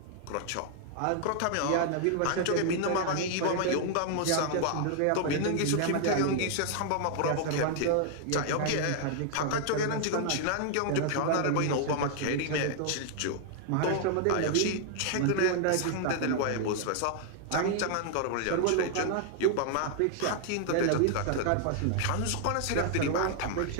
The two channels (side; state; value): both; different; correlation 0.00